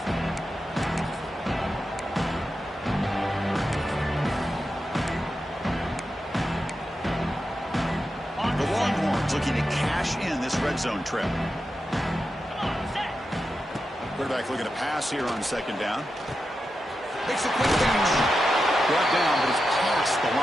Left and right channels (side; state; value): both; normal; correlation 0.89